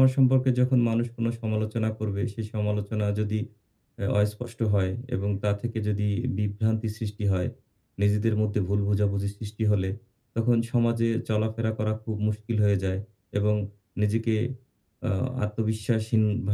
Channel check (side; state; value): both; identical; correlation 1.00